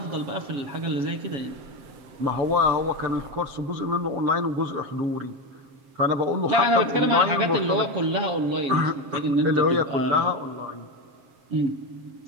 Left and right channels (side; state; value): left; late; 7.5 ms